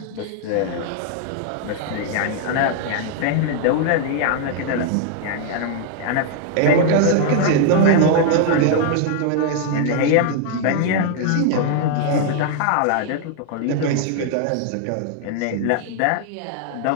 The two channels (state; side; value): different; both; correlation 0.00